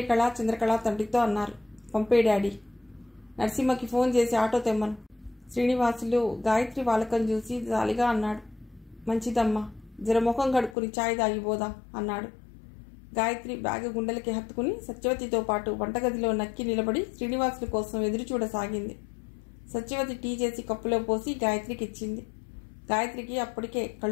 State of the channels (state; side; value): drops out; right; at 10.8 s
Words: చంద్రకళ తండ్రితో అన్నారు, పంపే డాడీ. నరసింహకి ఫోన్ చేసి ఆటో తెమ్మను. శ్రీనివాసులు గాయత్రి వాలకం చూసి జాలిగా అన్నాడు. మంచిదమ్మా, జరముఖం కడుక్కుని ఛాయ్ తాగిపోదాం అన్నాడు. గాయత్రి బ్యాగ్ గుండెలకి హత్తుకుని సత్యవతితో పాటు వంటగదిలో నక్కి నిలబడి శ్రీనివాసుల కోసం ఎదురు చూడసాగింది. సత్యవతి టీ చేసి కప్పులో పోసి గాయత్రికి ఇచ్చింది. గాయత్రికి అప్పటికే